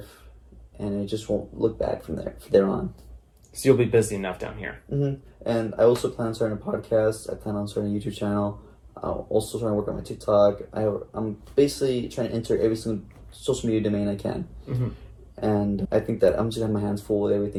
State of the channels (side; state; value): both; identical; correlation 1.00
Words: and it just won't look back from there on. So you'll be busy enough down here. And I also plan on starting a podcast. I plan on starting a YouTube channel. I'm also trying to work on my TikTok. I'm basically trying to enter every single social media domain I can. And I think that I'm just gonna have my hands full with